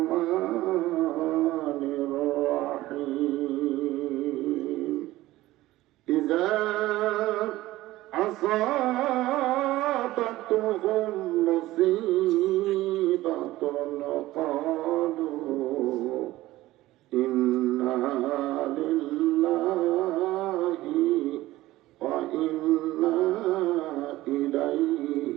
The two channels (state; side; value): quieter; left; 16.8 dB